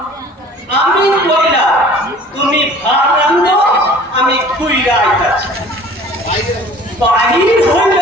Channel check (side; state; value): both; normal; correlation 0.48